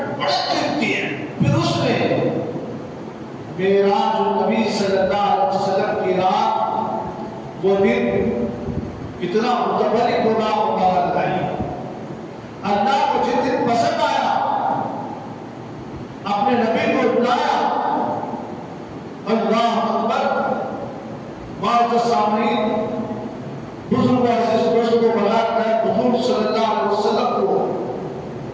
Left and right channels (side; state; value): both; identical; correlation 1.00